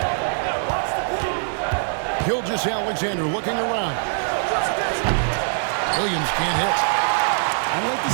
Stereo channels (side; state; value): left; silent; digital silence